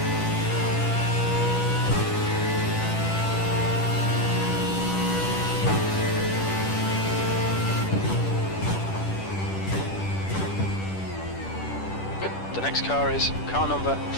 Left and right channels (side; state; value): right; late; 10 ms